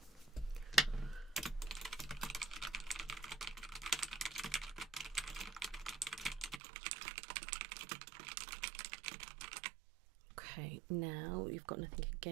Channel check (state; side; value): drops out; left; at 6.6 s